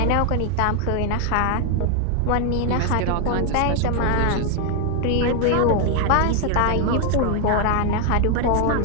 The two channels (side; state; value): both; different; correlation 0.00